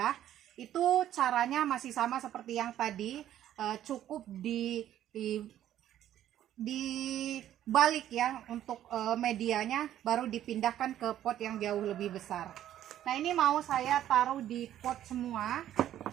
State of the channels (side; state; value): left; quieter; 11.8 dB